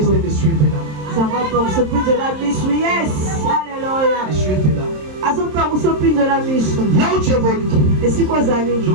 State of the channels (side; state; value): left; late; 27 ms